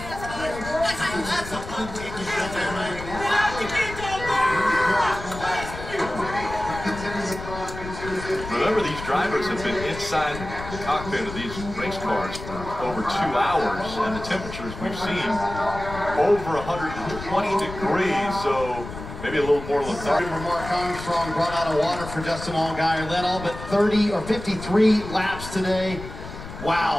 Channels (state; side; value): noise; left; rumble, 11 dB below the sound